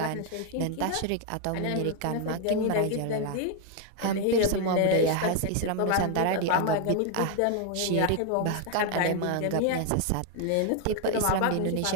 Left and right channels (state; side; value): different; both; correlation 0.01